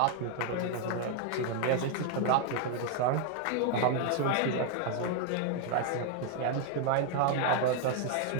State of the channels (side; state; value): both; different; correlation 0.00